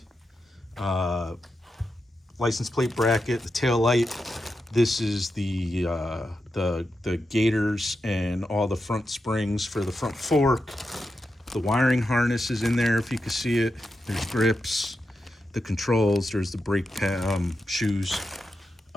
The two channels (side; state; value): both; normal; correlation 0.88